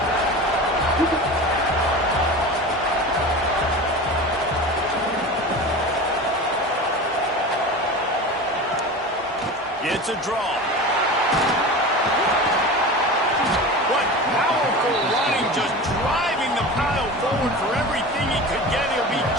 It's a draw. What powerful running, just driving the pile forward for everything he could get. He'll be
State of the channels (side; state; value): both; normal; correlation 0.31